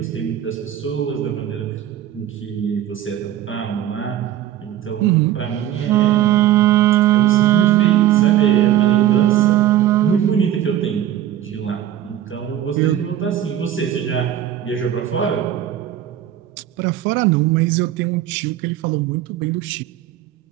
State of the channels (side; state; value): left; quieter; 11.7 dB